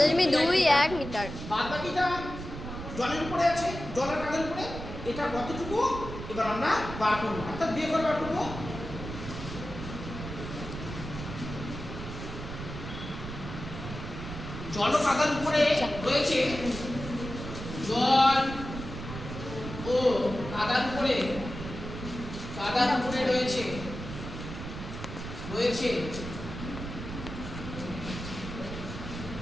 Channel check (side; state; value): right; noise; rumble, 9 dB below the sound